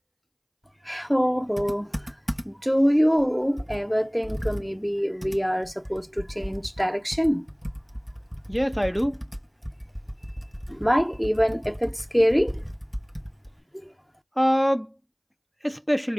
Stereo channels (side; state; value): both; identical; correlation 1.00